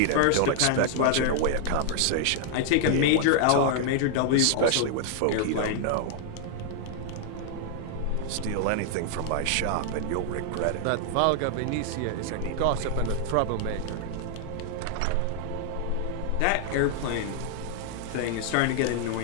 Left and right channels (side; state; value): both; different; correlation 0.00